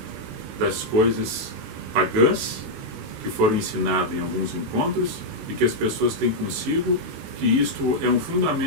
das coisas pagãs que foram ensinadas em alguns encontros e que as pessoas têm consigo, que isto é um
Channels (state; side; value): late; left; 18 ms